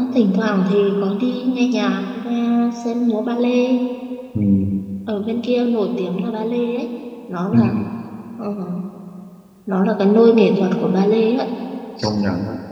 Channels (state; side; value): identical; both; correlation 1.00